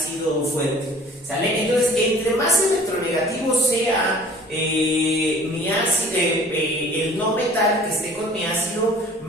fuerte, ¿sale? Entonces, entre más electronegativo sea mi ácido, el no metal que esté con mi ácido,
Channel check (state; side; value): normal; both; correlation 0.50